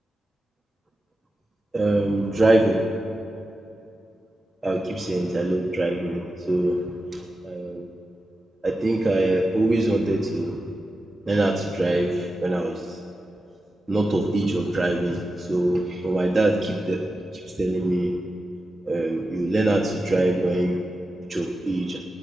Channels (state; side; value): normal; both; correlation 0.91